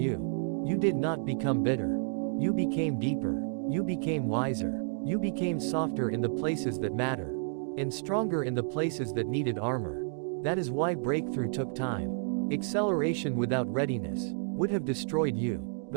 you did not become bitter. You became deeper. You became wiser. You became softer in the places that matter, and stronger in the places that needed armor. That is why breakthrough took time. Acceleration without readiness would have destroyed you.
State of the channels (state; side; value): silent; left; digital silence